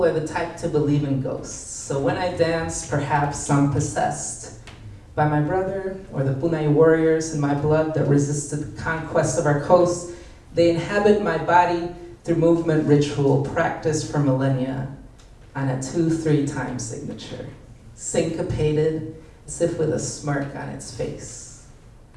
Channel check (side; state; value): both; identical; correlation 1.00